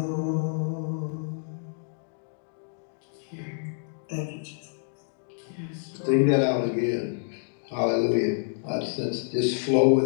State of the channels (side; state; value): right; silent; digital silence